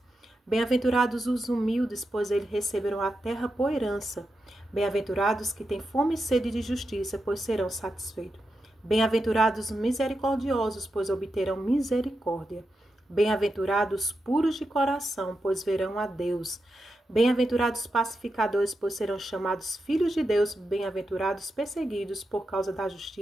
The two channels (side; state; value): both; normal; correlation 0.88